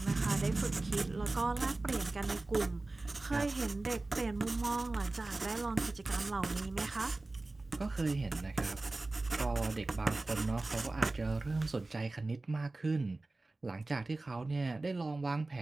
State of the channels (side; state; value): left; quieter; 3.1 dB